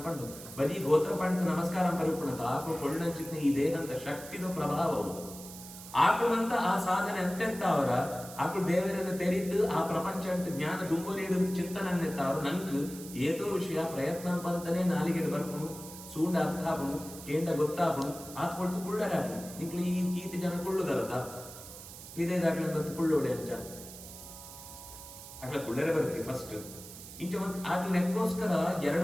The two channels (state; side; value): noise; right; hiss, 14 dB below the sound